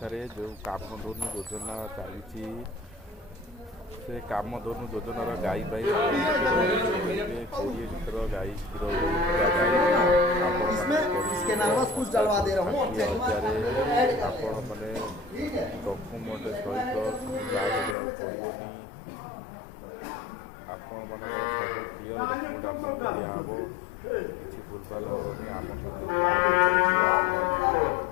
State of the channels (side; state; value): right; drops out; at 17.9 s